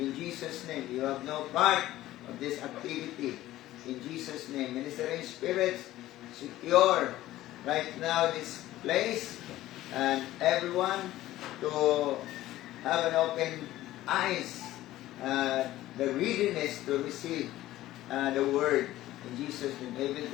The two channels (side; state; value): right; quieter; 15.3 dB